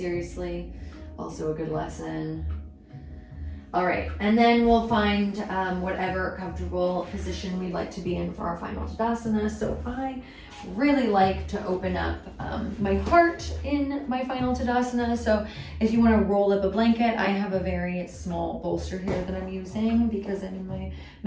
Also a good lesson. All right, and then we'll find whatever comfortable position we'd like to be in for our final Tadasana. So I really like to open up my heart in my final Tadasana. So if you want to roll up a blanket, I have a very small bolster here that I'm using because I'm in my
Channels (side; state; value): both; identical; correlation 1.00